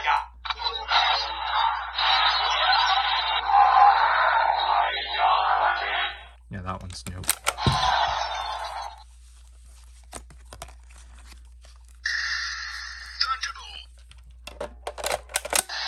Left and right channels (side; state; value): both; identical; correlation 1.00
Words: yeah, that one's new.